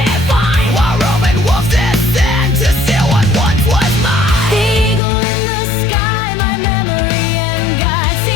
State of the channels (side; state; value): right; drops out; at 5.0 s